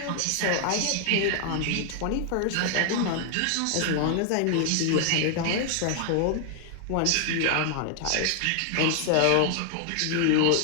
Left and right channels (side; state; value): both; different; correlation 0.00